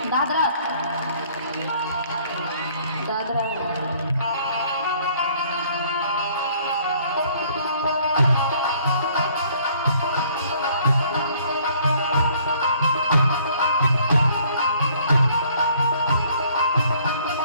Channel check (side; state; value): both; inverted; correlation -0.60